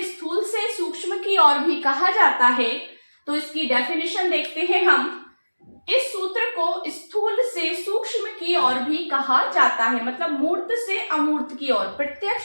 स्थूल से सूक्ष्म की ओर भी कहा जाता है। तो इसकी डेफिनेशन देखते हैं हम। इस सूत्र को स्थूल से सूक्ष्म की ओर भी कहा जाता है, मतलब मूर्त से अमूर्त की ओर,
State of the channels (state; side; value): inverted; both; correlation -1.00